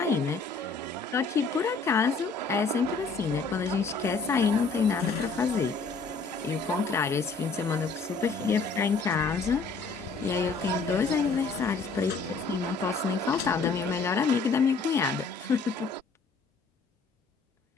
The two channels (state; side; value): quieter; right; 4.3 dB